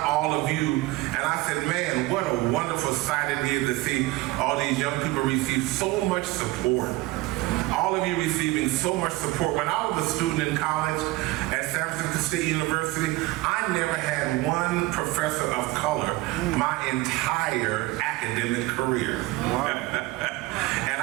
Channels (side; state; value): left; quieter; 19.7 dB